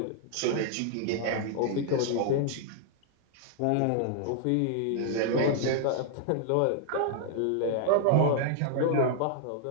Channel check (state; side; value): different; both; correlation 0.00